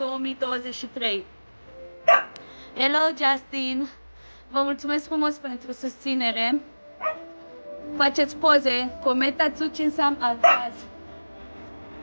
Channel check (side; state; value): both; inverted; correlation -1.00